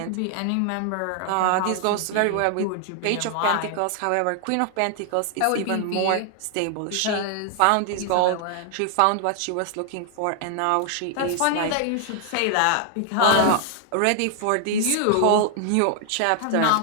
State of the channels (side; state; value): both; different; correlation 0.00